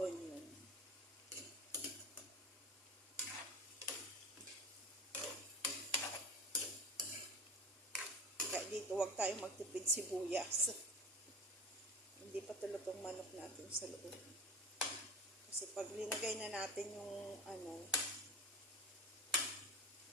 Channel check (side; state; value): both; normal; correlation 0.34